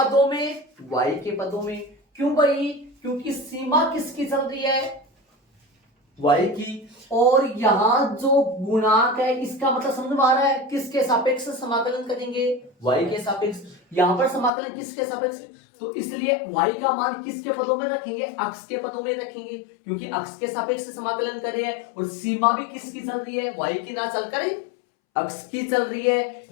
में, y के पदों में। क्यों भाई, क्योंकि सीमा किसकी चल रही है, y की, और यहां जो गुणांक है इसका मतलब समझ में आ रहा है, किसके सापेक्ष समाकलन करेंगे, y के सापेक्ष। यहां पर समाकलन किसके सापेक्ष, तो इसलिए y का मान किसके पदों में रखेंगे, अक्ष के पदों में रखेंगे, क्योंकि अक्ष के सापेक्ष समाकलन कर रहे हैं। और सीमा भी किसकी चल रही है, y की ना चलकर अक्ष की चल रही है।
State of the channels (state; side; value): drops out; right; at 14.5 s